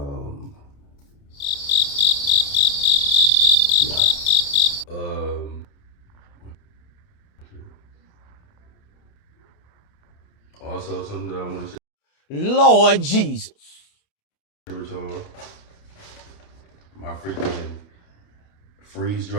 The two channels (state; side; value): late; right; 28 ms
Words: Yeah. Also something that I want to say. Lord Jesus. With y'all, my freaking freeze